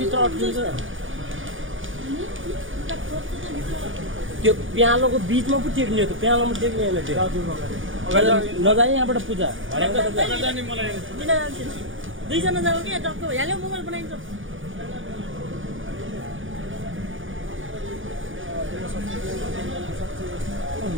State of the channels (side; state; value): left; late; 0.57 ms